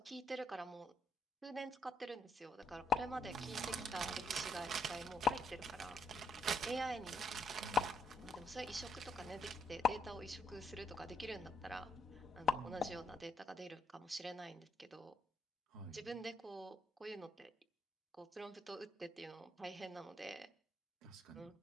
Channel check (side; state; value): both; normal; correlation 0.76